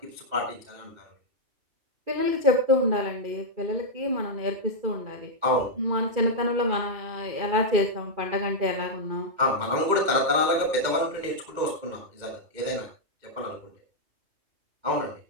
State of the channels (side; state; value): left; late; 2.2 ms